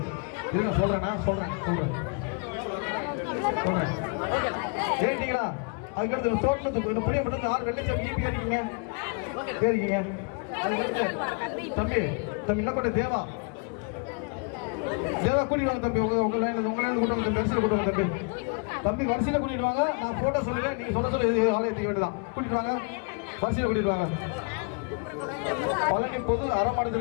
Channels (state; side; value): quieter; right; 36.9 dB